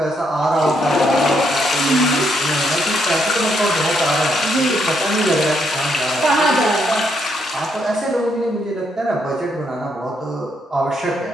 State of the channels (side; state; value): both; normal; correlation 0.75